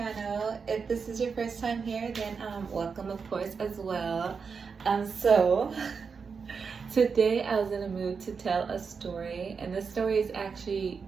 If this is your first time here, then welcome, of course, as well. So today I was in a mood to tell a story, and this story is actually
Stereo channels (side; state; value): left; quieter; 5.6 dB